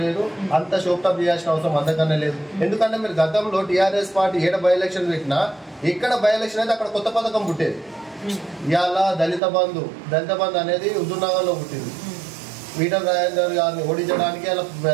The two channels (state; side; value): drops out; left; at 9.4 s